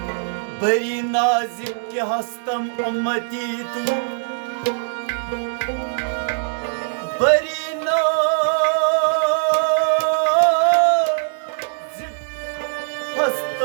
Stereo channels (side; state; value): left; silent; 65 dB below the other